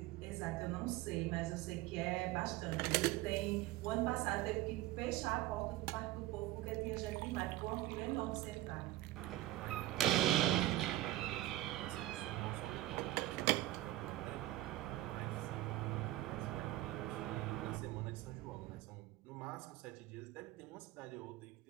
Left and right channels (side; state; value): left; quieter; 16.5 dB